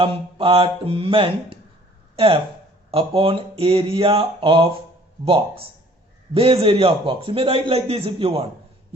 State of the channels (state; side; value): normal; both; correlation 0.54